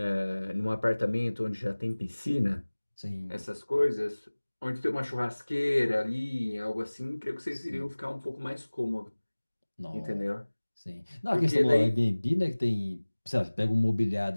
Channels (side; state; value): both; inverted; correlation -1.00